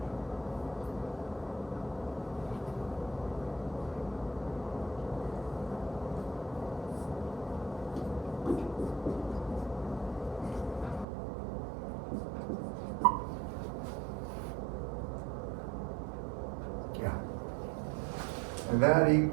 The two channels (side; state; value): left; drops out; at 11.1 s